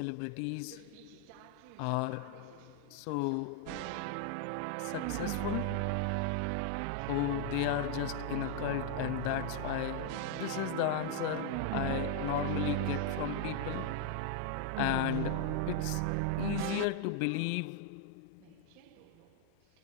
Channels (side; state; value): both; different; correlation 0.00